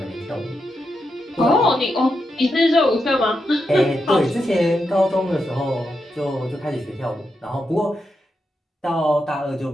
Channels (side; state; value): both; normal; correlation 0.85